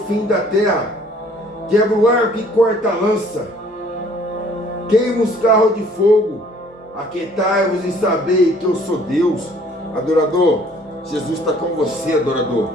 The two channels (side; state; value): both; normal; correlation 0.57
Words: da terra. Quebra o arco e corta a lança. Queima os carros de fogo. Aquietai-vos e sabei que eu sou Deus. Adorador, Jesus está com você, adorador.